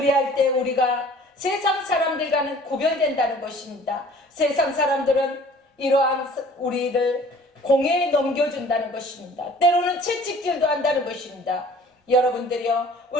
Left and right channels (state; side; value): normal; both; correlation 0.50